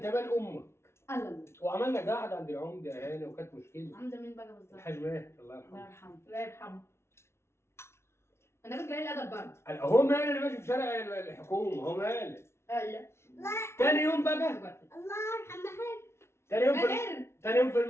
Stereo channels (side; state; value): right; late; 0.13 ms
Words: مال امك. الله. وعملنا قاعده عند العمده يا هاني وكانت مشكله. عمده مين بقى بالظبط؟ الحاج ماهر الله الله يرحمه. يرحمه. الله يرحمه. انا كنت قليل الادب برضه. هو مال انا ماشي في شارع الحكومه هو مال. ايوه. تاني يوم بقى. الله يرحم محمد. تاني يوم في ماهر. تاني يوم في